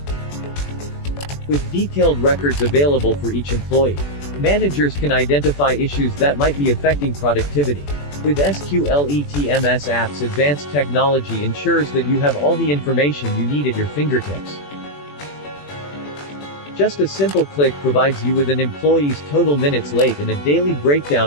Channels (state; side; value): late; right; 21 ms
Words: With detailed records available for each employee, managers can identify issues that might be affecting productivity. With SQLE TMS app's advanced technology ensures that you have all the information you need at your fingertips. Just a simple click provides you with an employee's total minutes late and a daily